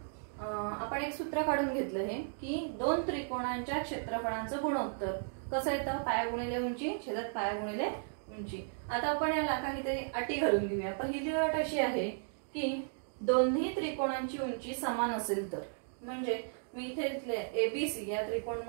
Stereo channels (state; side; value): silent; left; digital silence